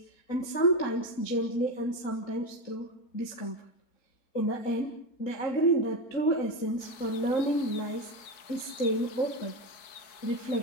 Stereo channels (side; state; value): right; late; 3.7 ms